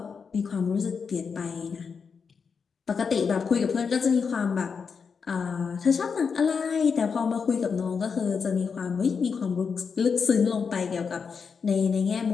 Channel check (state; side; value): quieter; right; 5.8 dB